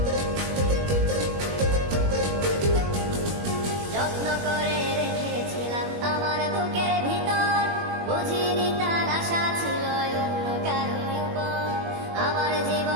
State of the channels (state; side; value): late; left; 21 ms